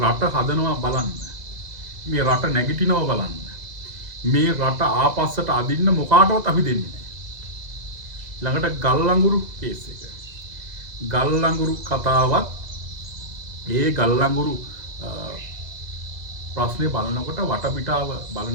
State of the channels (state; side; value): late; left; 2.0 ms